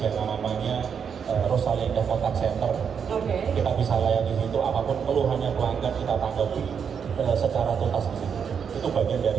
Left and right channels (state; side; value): quieter; left; 7.0 dB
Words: yang namanya Rosalia Indah Contact Center. Kita bisa layani di situ, apapun keluhannya pelanggan kita tanggapi secara tuntas di situ. Itu bagian dari